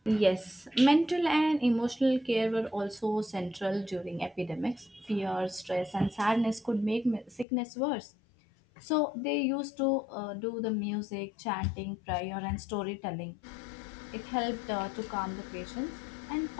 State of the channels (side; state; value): right; drops out; at 7.5 s